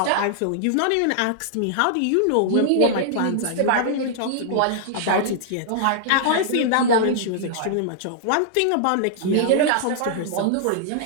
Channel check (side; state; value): both; different; correlation -0.01